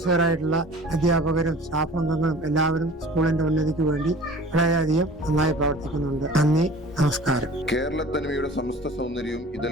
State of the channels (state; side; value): normal; both; correlation 0.45